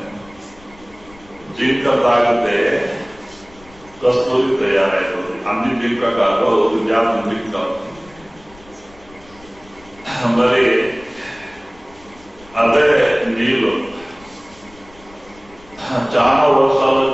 జింక తాగితే కస్తూరి తయారైతుంది. అన్ని జింక కాదు, జాతి జింక. మరి అదే నీళ్ళు చాలా వర్షాలు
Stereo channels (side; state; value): left; noise; rumble, 25 dB below the sound